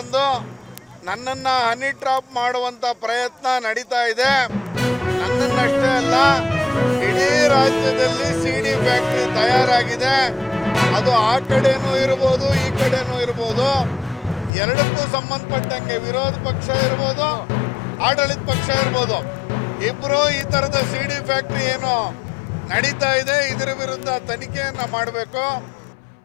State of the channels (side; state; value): right; drops out; at 14.5 s